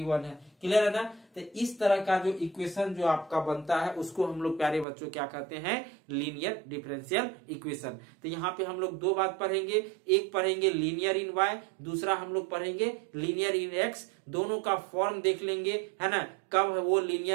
1 है। क्लियर है ना? तो इस तरह का जो इक्वेशन जो आपका बनता है उसको हम लोग प्यारे बच्चों क्या कहते हैं, लीनियर डिफरेंशियल इक्वेशन। तो यहाँ पे हम लोग दो बात पढ़ेंगे, एक पढ़ेंगे लीनियर इन y, दूसरा हम लोग पढ़ेंगे लीनियर इन x। दोनों का फॉर्म देख लेंगे, है ना, कब वो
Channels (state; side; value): drops out; left; at 4.9 s